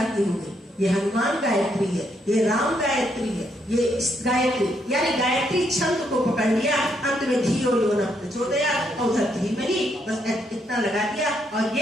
की हो गई, ये हनुमान गायत्री है, ये राम गायत्री है, ये गायत्री यानी गायत्री छंद को पकड़ लिया, अंत में धियो यो न प्रचोदयात् और उधर धीमहि बस इतना लगा दिया और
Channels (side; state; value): both; normal; correlation 0.75